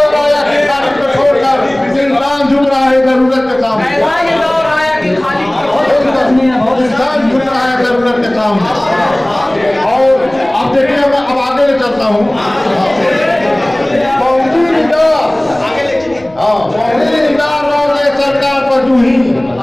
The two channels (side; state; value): left; noise; rumble, 25 dB below the sound